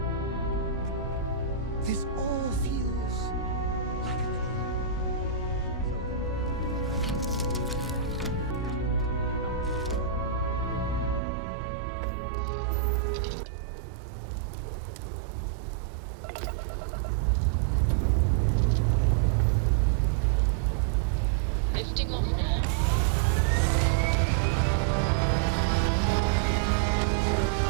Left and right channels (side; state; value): left; drops out; at 11.2 s